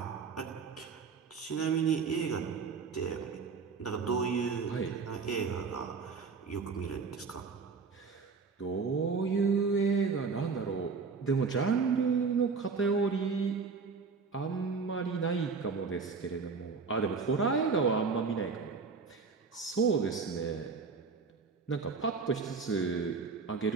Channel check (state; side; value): quieter; left; 5.0 dB